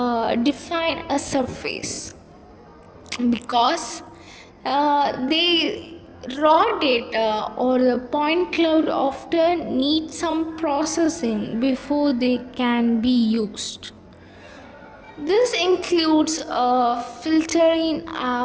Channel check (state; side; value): identical; both; correlation 1.00